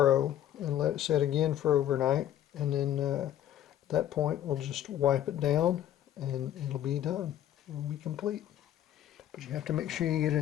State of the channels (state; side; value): quieter; right; 11.5 dB